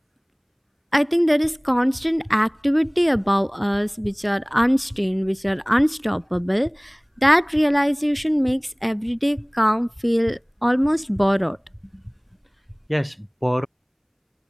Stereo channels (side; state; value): both; identical; correlation 1.00